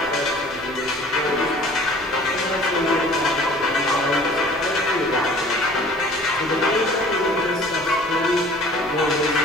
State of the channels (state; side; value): noise; left; rumble, 25 dB below the sound